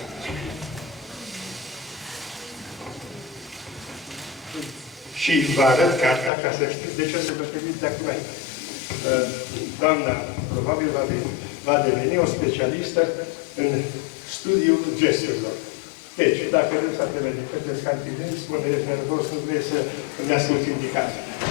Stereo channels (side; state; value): right; drops out; at 6.3 s